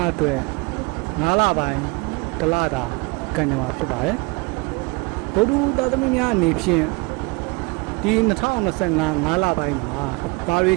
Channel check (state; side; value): quieter; left; 28.6 dB